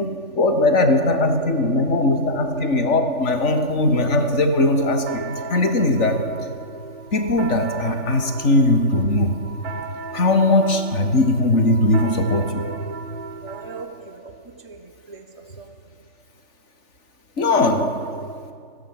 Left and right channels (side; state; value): right; late; 3.4 ms